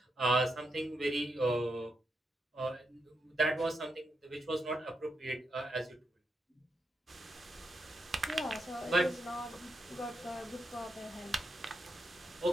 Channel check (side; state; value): both; normal; correlation 0.83